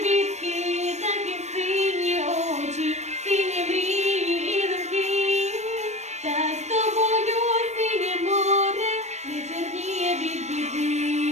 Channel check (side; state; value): left; late; 0.33 ms